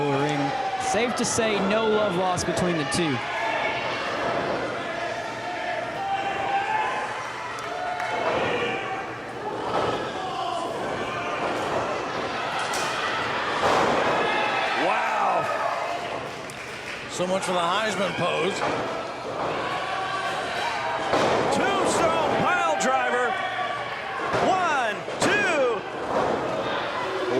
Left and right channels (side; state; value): both; identical; correlation 1.00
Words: of the ring. Safe to say, no love lost between the two. Wow. So much for the Heisman pose. Tombstone pile driver. 1, 2.